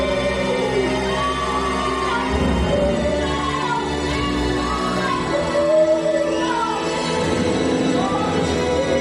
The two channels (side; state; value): both; identical; correlation 1.00